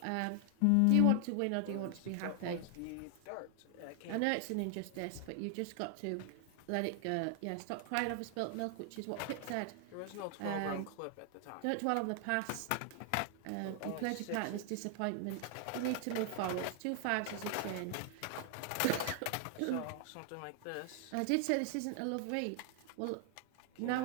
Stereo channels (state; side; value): different; both; correlation 0.00